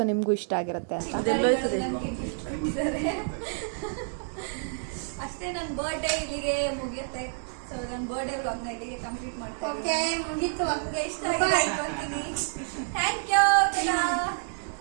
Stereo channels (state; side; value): silent; left; digital silence